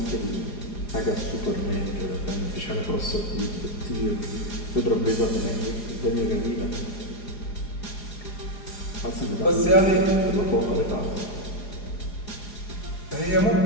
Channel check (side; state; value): right; late; 4.8 ms